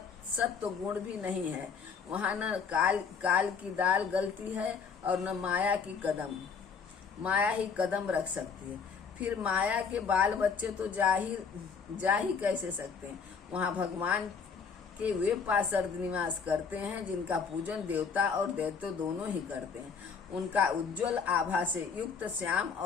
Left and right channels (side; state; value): right; quieter; 5.8 dB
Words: सत्व गुण भी नहीं है। वहाँ न काल की दाल गलती है और न माया ही कदम रख सकती है। फिर माया के बाल बच्चे तो जा ही कैसे सकते हैं। वहाँ भगवान के वे पार्षद निवास करते हैं जिनका पूजन देवता और दैत्य दोनों ही करते हैं। उनका उज्जवल आभा से युक्त श्याम